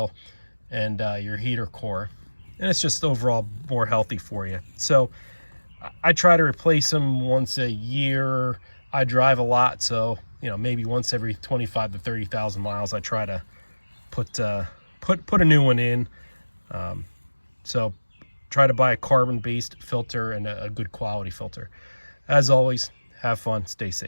and your heater core. And it's just overall more healthy for you. So I try to replace them once a year. I drive a lot, so you know, maybe once every 25 to 30,000 miles I try to put a new one in. So try to buy a carbon based filter and a good quality filter. As always, have fun, stay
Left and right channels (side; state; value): both; inverted; correlation -1.00